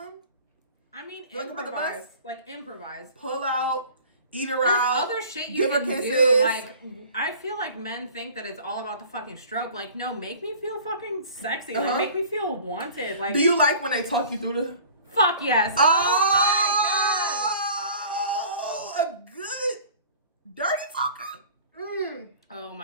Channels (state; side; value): inverted; both; correlation -0.46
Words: I mean, improvise. Like improvise. Pull out. Eat her There's out. Other shit you can do. Like, I feel like men think that it's all about the fucking stroke. Like, no, make me feel fucking sexy. Like, make me feel wanted. Like, do you like when they talk you through the? Fuck yes. Oh my god. A good dirty talker. Oh